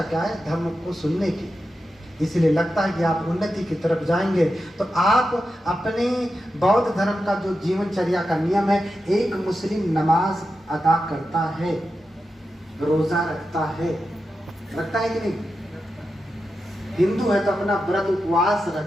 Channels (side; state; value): both; normal; correlation 0.89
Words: क्या है? धर्म को सुनने की। इसलिए लगता है कि आप उन्नति की तरफ जाएंगे। तो आप अपने बौद्ध धर्म का जो जीवनचर्या का नियम है, एक मुस्लिम नमाज अदा करता है, रोजा रखता है कि नहीं? हिंदू है तो अपना व्रत उपवास